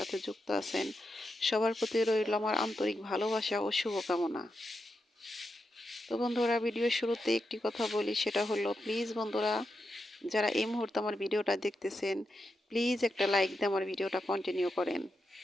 যুক্ত আছেন, সবার প্রতি রইল আমার আন্তরিক ভালোবাসা ও শুভকামনা। তো বন্ধুরা, ভিডিওর শুরুতে একটি কথা বলি, সেটা হলো প্লিজ বন্ধুরা, যারা এই মুহূর্তে আমার ভিডিওটা দেখতেছেন, প্লিজ একটা লাইক দিয়ে আমার ভিডিওটা কন্টিনিউ করেন।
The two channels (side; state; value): both; normal; correlation 0.87